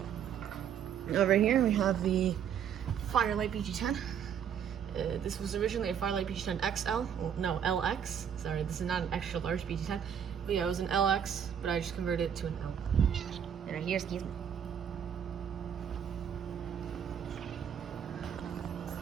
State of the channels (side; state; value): left; quieter; 8.4 dB